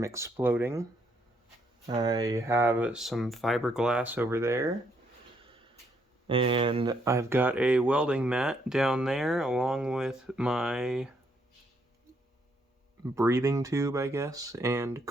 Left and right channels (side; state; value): both; normal; correlation 0.73